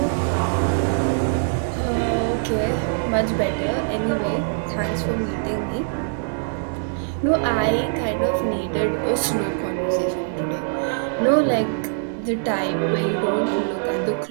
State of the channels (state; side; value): silent; left; digital silence